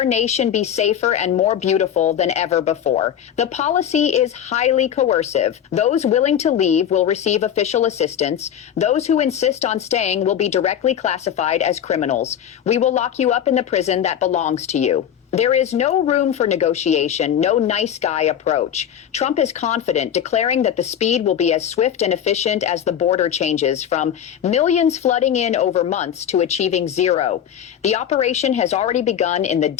nation be safer and more beautiful than ever before. The policy is highly coercive. Those willing to leave will receive official assistance. Those who insist on staying will be directly classified as criminals. We will lock you up in the prison that belongs to you. There is no room for negotiation, no nice guy approach. Trump is confident, declaring that the speed will be as swift and efficient as the border changes, from millions flooding in over months to achieving zero. The operation has already begun in the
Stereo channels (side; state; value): right; quieter; 9.4 dB